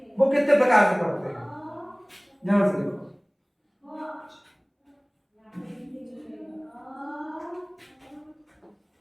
वो कितने प्रकार से पढ़ते हैं, ध्यान से देखो।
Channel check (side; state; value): both; identical; correlation 1.00